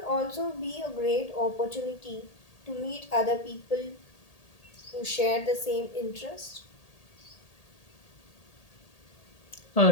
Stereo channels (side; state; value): right; late; 1.8 ms